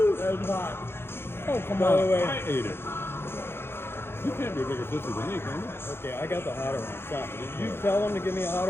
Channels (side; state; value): right; late; 0.11 ms